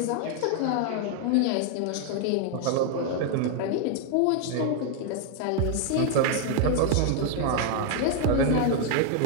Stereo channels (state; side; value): different; both; correlation 0.00